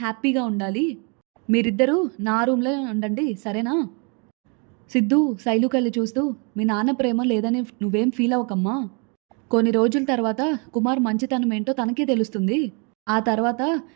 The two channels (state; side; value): quieter; left; 34.8 dB